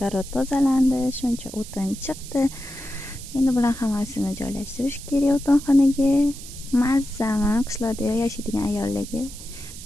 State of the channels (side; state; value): right; noise; hiss, 14 dB below the sound